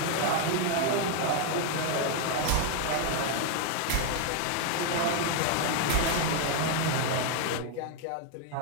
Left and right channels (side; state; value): both; different; correlation 0.00